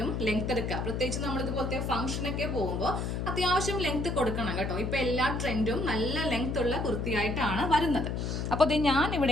ലെങ്ത് എടുക്കുക. പ്രത്യേകിച്ച് നമ്മൾ ഇതുപോലത്തെ ഫംഗ്ഷനൊക്കെ പോകുമ്പോൾ അത്യാവശ്യം ലെങ്ത് കൊടുക്കണം കേട്ടോ. ഇപ്പൊ എല്ലാ ട്രെൻഡും നല്ല ലെങ്ത് ഉള്ള കുർത്തിയായിട്ടാണ് വരുന്നത്. അപ്പൊ ഞാൻ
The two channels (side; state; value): left; noise; hum, 2 dB below the sound